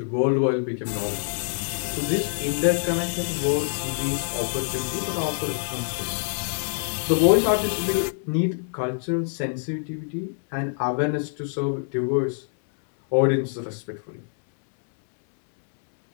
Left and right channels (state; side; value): silent; right; 62 dB below the other